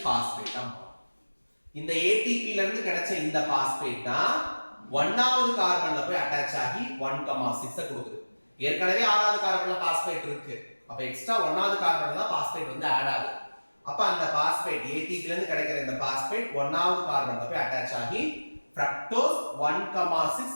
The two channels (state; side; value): inverted; both; correlation -1.00